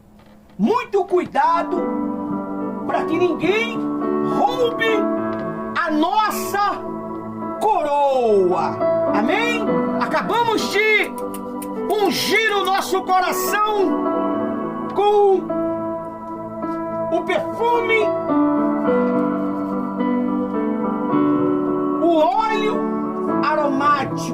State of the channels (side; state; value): both; identical; correlation 1.00